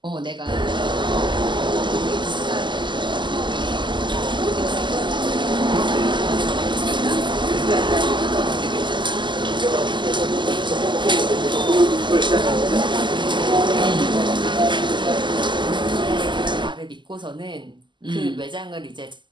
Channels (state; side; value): late; left; 0.22 ms